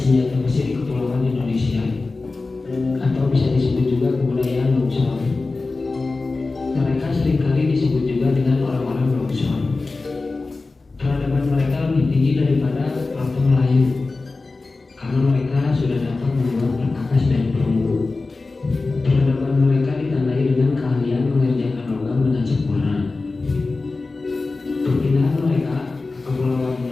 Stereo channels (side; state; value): right; quieter; 3.6 dB